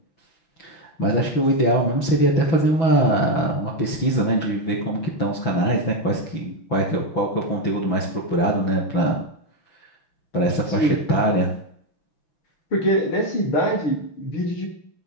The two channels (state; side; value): late; right; 6.1 ms